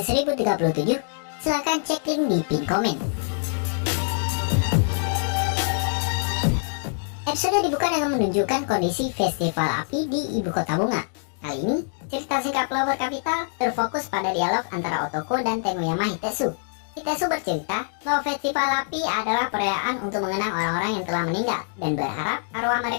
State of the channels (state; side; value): silent; right; digital silence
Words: silahkan cek link di pin komen. Episode dibuka dengan menunjukkan kondisi festival api di ibu kota bunga. Kali ini, cerita singkat Flower Capital terfokus pada dialog antara Otoko dan Tenguyama Hitesu. Hitesu bercerita bahwa festival api adalah perayaan untuk mengenang orang-orang yang telah meninggal dan berharap arwah